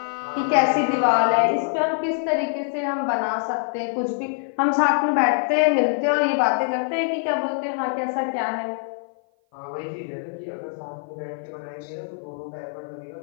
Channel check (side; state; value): right; silent; 56 dB below the other